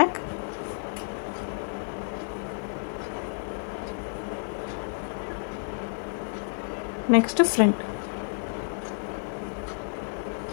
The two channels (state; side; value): silent; right; digital silence